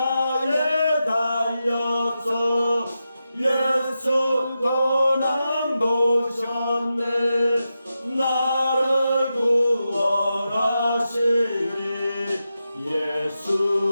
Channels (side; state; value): both; inverted; correlation -0.89